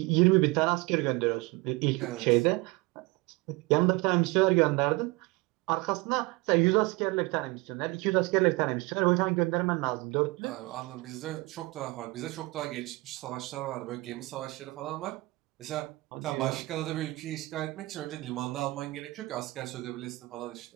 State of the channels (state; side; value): quieter; left; 22.9 dB